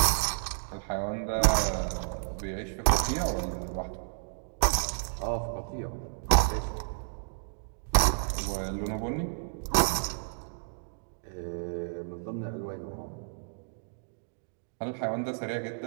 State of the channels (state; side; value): silent; left; digital silence